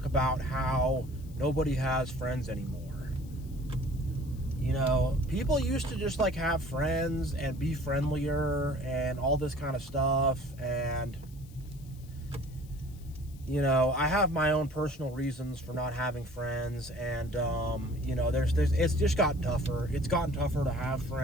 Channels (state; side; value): noise; left; hiss, 25 dB below the sound